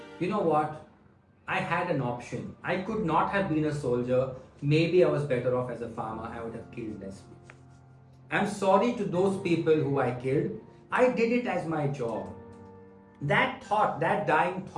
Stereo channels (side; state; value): both; identical; correlation 1.00